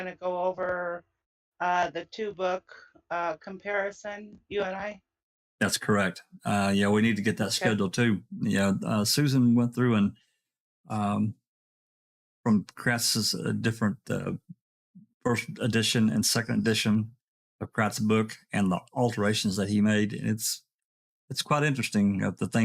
to go over the 2-book comparison. You and I. That's correct. Yeah, we need to get that scheduled too. Yeah, Susan went through and from Kratz's different first edition and second edition of Kratz's book and the alterations that he made. It's quite interesting of the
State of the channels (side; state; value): both; identical; correlation 1.00